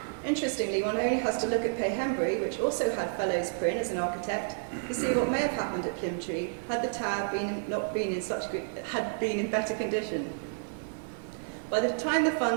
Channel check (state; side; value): silent; left; 57 dB below the other